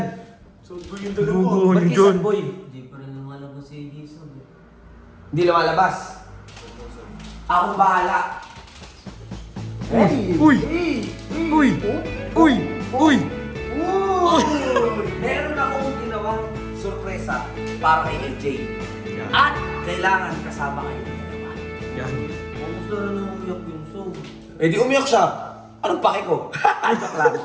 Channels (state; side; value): identical; both; correlation 1.00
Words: So, yung Guguho Ba't ni yun John. boy? Hindi pa rin lumalabas si Jason. Hindi lumalabas. Akong bahala. Uy! Uy! Uy! Uy! Uy! Meron akong ginawang sorpresa para kay AJ. At kailangan kasama kayo ng dalawa. Yan. Almost na rin ang umiyak yung soul. Eh di umiyak siya. Anong pake ko? Joke lang.